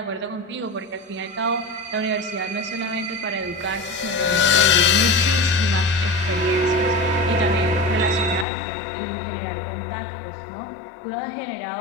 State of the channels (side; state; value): right; drops out; at 8.5 s